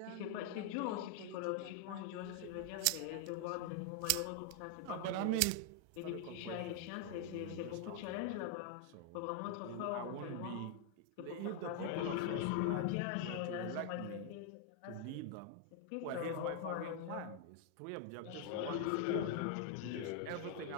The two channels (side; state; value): both; different; correlation 0.00